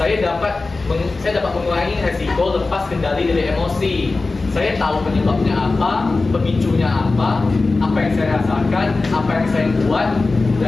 dapat mengurangi resiko lepas kendali dari emosi. Saya tahu penyebabnya apa, pemicunya apa yang saya rasakan, apa yang saya buat,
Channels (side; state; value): right; quieter; 3.6 dB